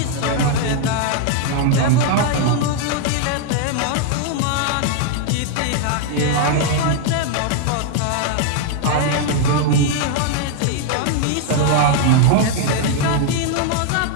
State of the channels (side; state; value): both; different; correlation 0.00